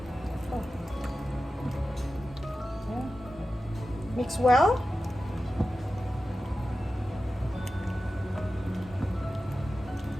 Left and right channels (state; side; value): normal; both; correlation 0.94